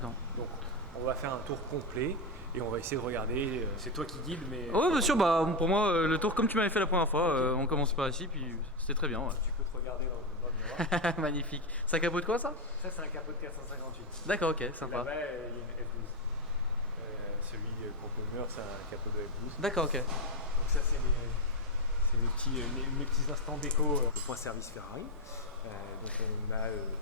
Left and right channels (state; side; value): normal; both; correlation 0.08